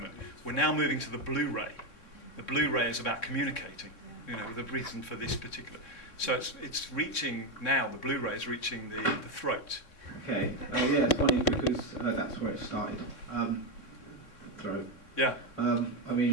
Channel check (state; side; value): late; right; 3.6 ms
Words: We're now moving to the blue ray. The blue ray is about communicating, the reason for this particular. So it's reaching now, the blue ray is reaching the throat. Okay, yeah, it's funny because that's where it started. Throat. Yeah. I